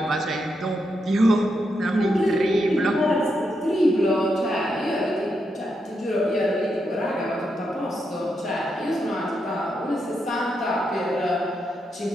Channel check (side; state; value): both; normal; correlation 0.83